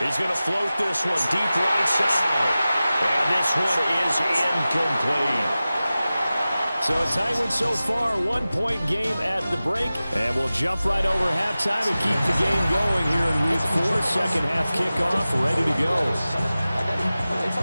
He's going to float this one deep right side. And this one is incomplete. So a tight one so far, 1-point game at the break. And we'll jump right over halftime and keep the game going here in week 4. Second half kickoff, ready to go.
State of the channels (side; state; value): both; inverted; correlation -0.96